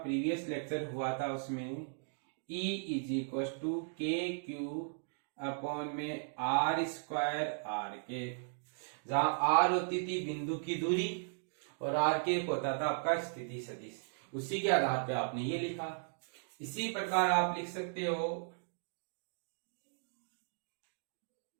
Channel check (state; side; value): silent; left; digital silence